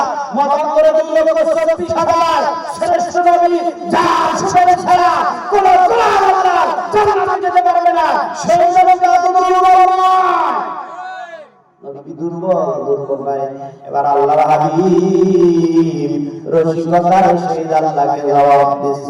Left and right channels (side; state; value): both; identical; correlation 1.00